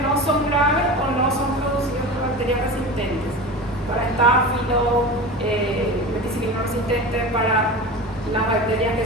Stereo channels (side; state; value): both; normal; correlation 0.30